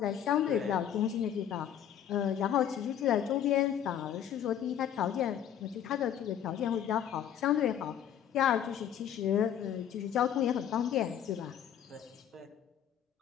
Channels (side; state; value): right; quieter; 9.6 dB